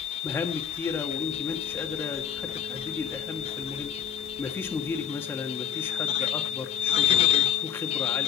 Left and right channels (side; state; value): right; quieter; 8.9 dB